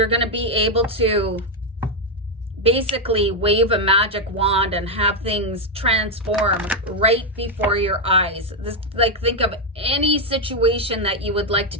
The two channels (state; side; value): normal; both; correlation 0.03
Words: going to be able to basically wave a magic wand and have things transform right before your eyes. This, like, think of any situation that you would like to